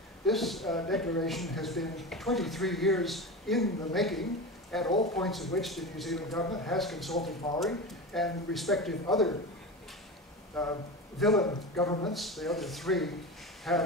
this declaration has been 23 years in the making, at all points at which the New Zealand government has consulted Maori and respective other villain governments, the other three,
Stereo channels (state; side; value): normal; both; correlation 0.26